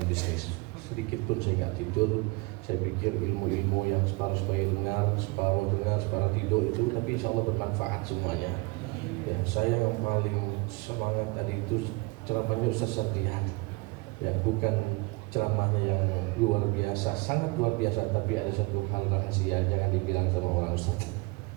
bisnis. Sedikit pun saya nggak tidur. Saya pikir ilmu-ilmu yang separuh supaya dengar, separuh tidur itu, tapi insya Allah bermanfaat semuanya. Ya, saya yang paling semangat tadi itu ceramahnya Ustaz Satrihan. Ya, bukan ceramahnya yang luar biasa, sangat luar biasa, tapi ada satu hal rahasia, jangan dibilang sama orang Ustaz.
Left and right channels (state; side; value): quieter; left; 25.9 dB